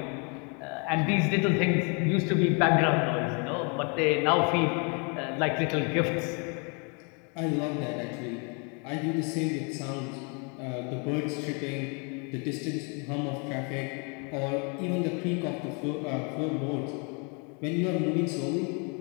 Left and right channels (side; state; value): right; quieter; 35.1 dB